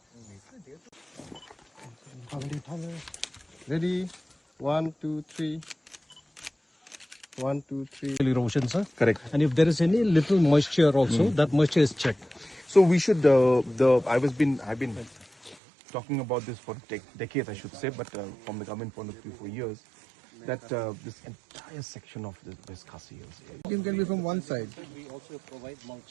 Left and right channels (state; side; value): drops out; left; at 15.6 s